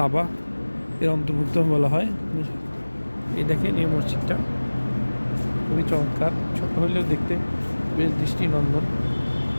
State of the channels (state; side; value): inverted; both; correlation -1.00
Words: এর অন্তর্ভুক্ত বলা হয়। এই দেখেন এই মসজিদটা খুবই চমৎকার, ছোট হলেও দেখতে বেশ দৃষ্টিনন্দন।